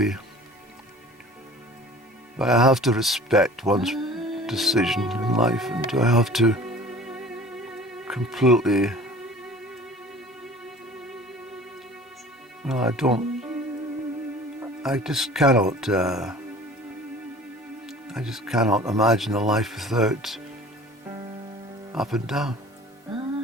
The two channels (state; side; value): normal; both; correlation 0.45